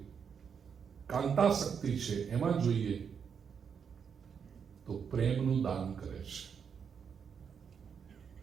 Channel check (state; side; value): quieter; left; 6.9 dB